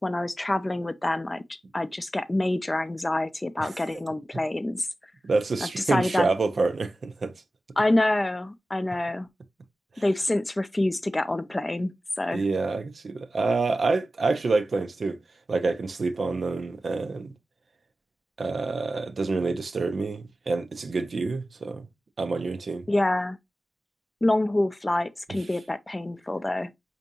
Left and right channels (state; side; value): normal; both; correlation 0.95